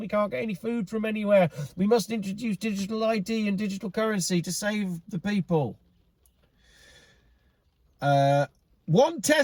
we can't get any food from anywhere. We must introduce digital ID and digital currency to save the people. One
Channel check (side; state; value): both; identical; correlation 1.00